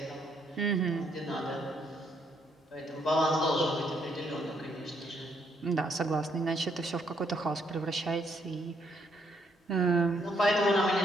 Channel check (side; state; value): both; normal; correlation 0.72